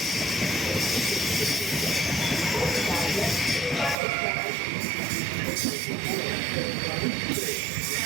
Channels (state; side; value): drops out; left; at 4.0 s